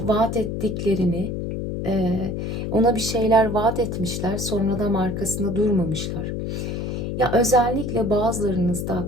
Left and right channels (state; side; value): noise; left; hum, 3 dB below the sound